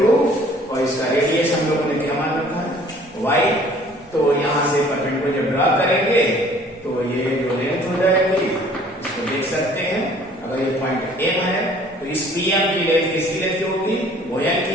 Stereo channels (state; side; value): normal; both; correlation 0.54